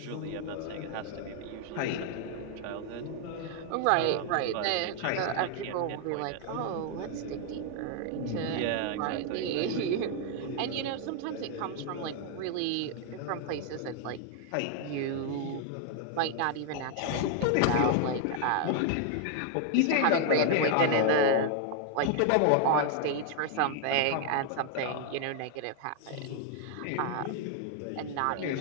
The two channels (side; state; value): both; different; correlation 0.00